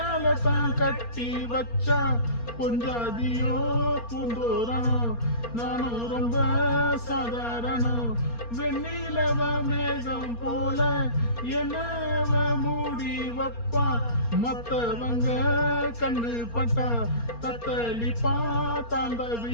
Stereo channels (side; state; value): right; late; 4.3 ms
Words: தான் கட்டி வச்சா பொஞ்சாதியோ பூந்தோரணம் நானும் ரொம்ப சாதாரணம் வெண்ணிலவ மேகம் போல என்னவ மூடி வப்பா மத்தவங்க கண்ணு பட்டா தத்தளிப்பா